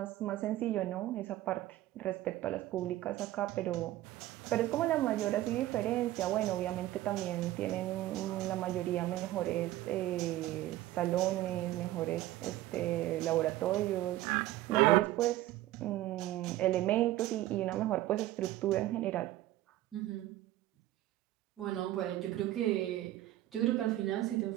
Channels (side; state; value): left; quieter; 15.3 dB